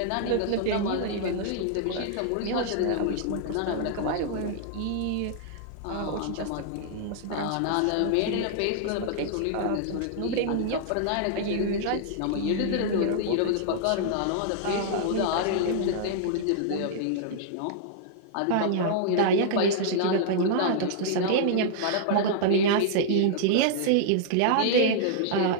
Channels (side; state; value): both; different; correlation -0.01